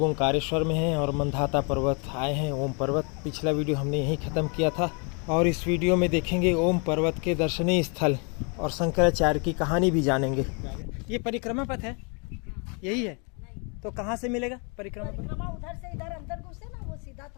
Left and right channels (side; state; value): right; quieter; 35.5 dB